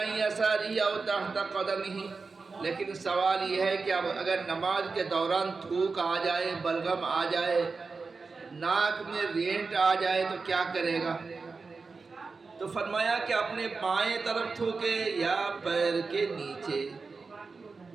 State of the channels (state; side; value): quieter; left; 4.4 dB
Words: يَسَارِهِ أَوْ تَحْتَ قَدَمِهِ، لیکن سوال یہ ہے کہ اب اگر نماز کے دوران تھوک آ جائے، بلغم آ جائے، ناک میں رینٹ آ جائے تو کیا کرے گا؟ تو فرمایا کہ اپنے بائیں طرف تھوکے یا پیر کے نیچے۔